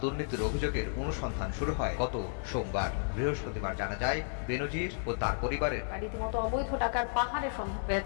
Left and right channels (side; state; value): right; silent; 56 dB below the other